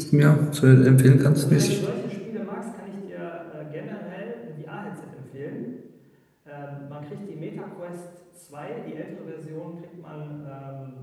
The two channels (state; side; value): identical; both; correlation 1.00